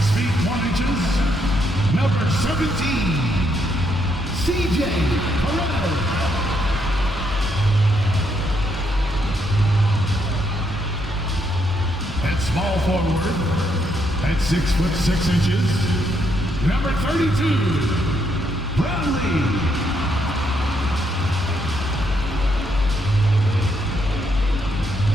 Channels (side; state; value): both; normal; correlation 0.76